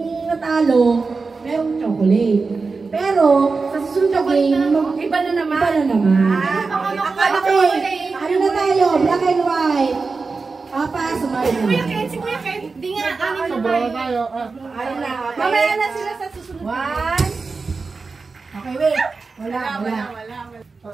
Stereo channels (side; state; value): left; quieter; 4.3 dB